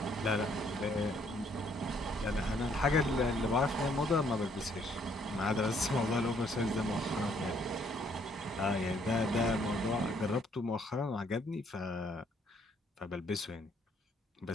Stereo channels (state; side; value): normal; both; correlation 0.66